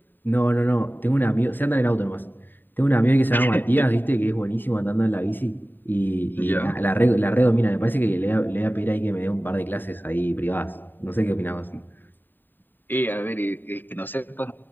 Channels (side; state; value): right; late; 0.092 ms